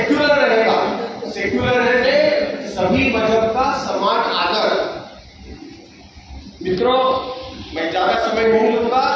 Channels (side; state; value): both; identical; correlation 1.00